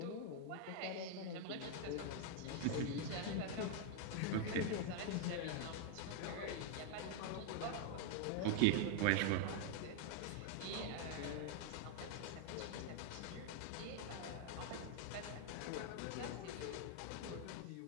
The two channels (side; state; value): both; different; correlation 0.01